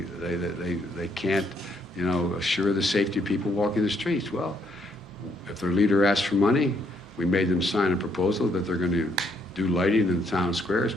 assure the safety of people walking the streets. Well, if their leader asks for money, we made them sign a proposal that they're going to do lighting in the town squares,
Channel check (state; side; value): normal; both; correlation 0.71